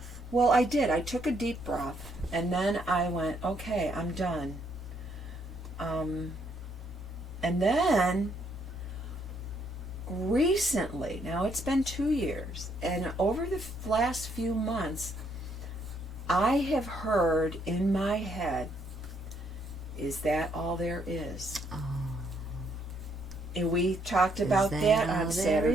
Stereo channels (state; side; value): normal; both; correlation 0.71